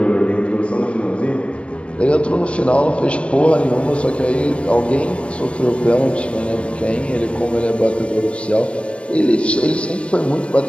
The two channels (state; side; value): late; right; 0.059 ms